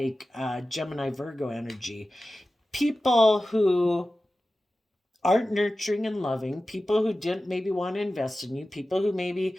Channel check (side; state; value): both; normal; correlation 0.95